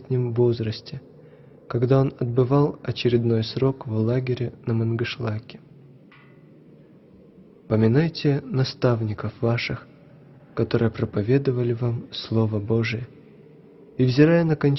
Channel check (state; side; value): identical; both; correlation 1.00